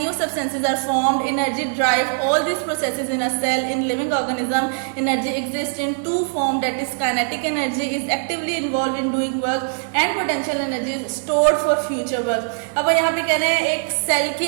new substances are formed. Energy drive all these processes in a cell. In living organism, energy exists in two forms. That is, kinetic energy is actively involved in doing work, and potential energy is stored for future work. अब यहाँ पे कह रहे हैं एक cell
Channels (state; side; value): silent; left; digital silence